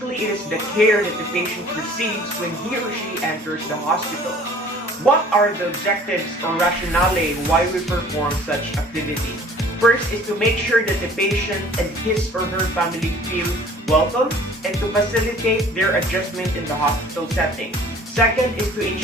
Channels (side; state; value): both; normal; correlation 0.50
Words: it is the care that the patient receives when he or she enters the hospital. What are the objectives or rationale why we perform such activity? First is to make sure that the patient and his or her family feel welcome and to facilitate their adjustment in the hospital setting. Second is to